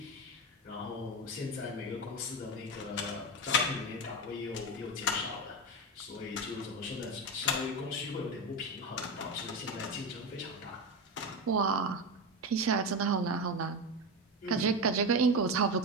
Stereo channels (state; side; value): normal; both; correlation 0.18